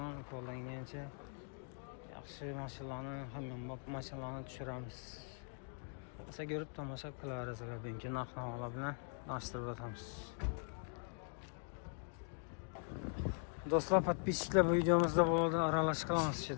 qo'ldan kelgancha yaxshi mashinalarni, hamma mashinalarni tushiramiz. Asa ko'rib tomosha qilaverasizlar. Bugungi narx-navolar bilan tanishtirib o'tamiz. Do'stlar, podpисчиклар, bu videomizda bo'ladi aralash qilamiz.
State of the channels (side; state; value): right; silent; 50 dB below the other